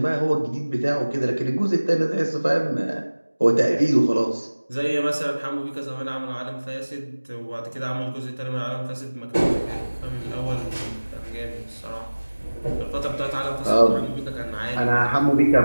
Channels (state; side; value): inverted; both; correlation -1.00